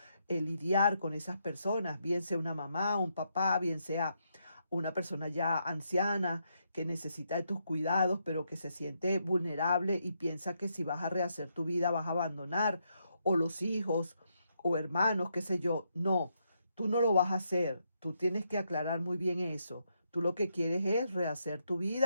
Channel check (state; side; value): inverted; both; correlation -0.79